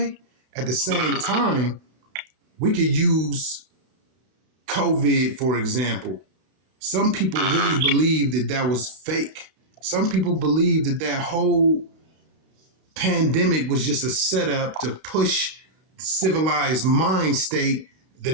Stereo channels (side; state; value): left; late; 32 ms